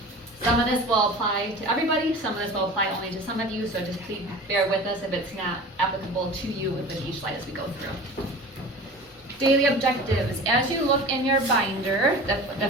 Some of this will apply to everybody, some of this will apply only to some of you, so just please bear with us if it's not applicable to you with each slide as we go through. Daily objectives. As you look in your binder, the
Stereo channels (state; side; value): normal; both; correlation 0.37